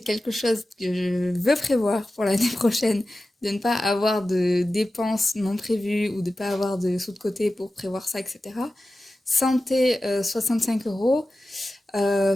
chose que je veux prévoir pour l'année prochaine, de ne pas avoir de dépenses non prévues ou de ne pas avoir de sous de côté pour prévoir ça, etc. Santé, 65 euros.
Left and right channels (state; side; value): normal; both; correlation 0.94